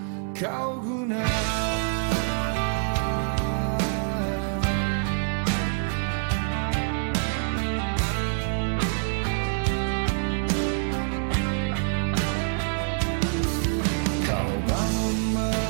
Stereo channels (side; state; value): left; silent; digital silence